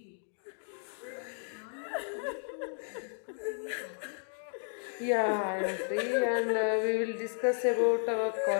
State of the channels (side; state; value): right; silent; 56 dB below the other